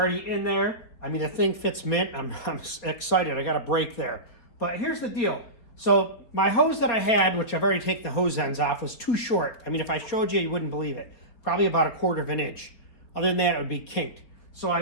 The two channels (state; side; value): late; right; 4.3 ms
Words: in there. I mean, the thing fits mint. I'm excited. I got a break there. But here's the deal. So my hose that I had, which I've already taken the hose ends off, was too short. I mean, if I showed you, you wouldn't believe it. Probably about 1/4 of an inch. Other than that, it would be kinked. So I